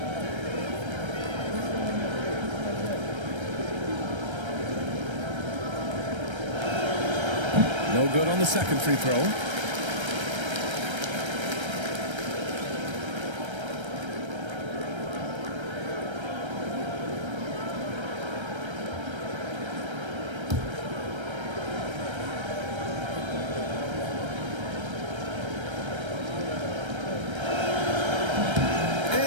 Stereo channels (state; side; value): late; left; 1.3 ms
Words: No good on the second free throw.